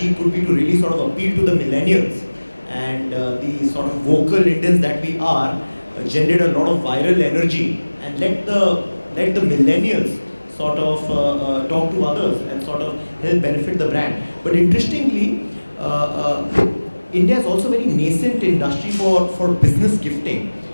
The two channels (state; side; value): inverted; both; correlation -1.00